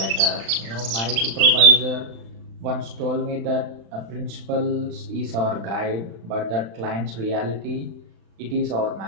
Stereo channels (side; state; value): left; late; 36 ms